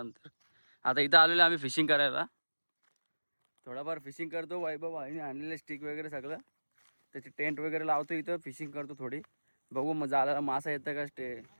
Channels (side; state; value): both; inverted; correlation -1.00